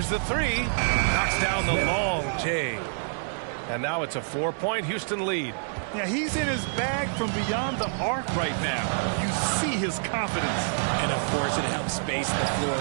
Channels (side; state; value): left; silent; digital silence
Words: the 3. Knocks down the long J. And now it's a 4-point Houston lead. Yeah, he's in his bag from beyond the arc right now. You see his confidence. And of course it helps space the floor,